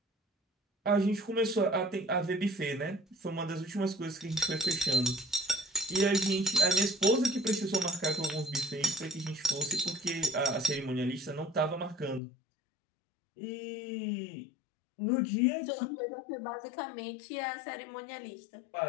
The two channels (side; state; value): right; drops out; at 12.2 s